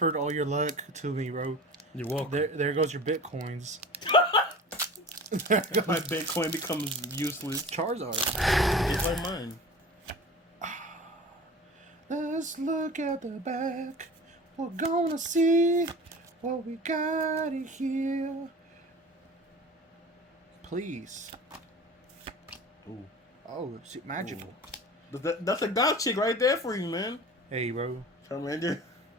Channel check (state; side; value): normal; both; correlation 0.37